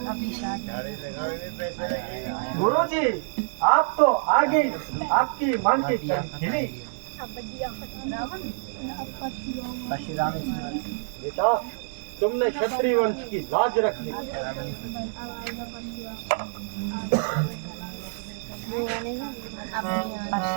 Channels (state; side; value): silent; left; 60 dB below the other